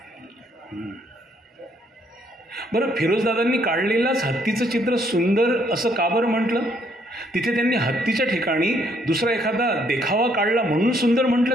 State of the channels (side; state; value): both; normal; correlation 0.69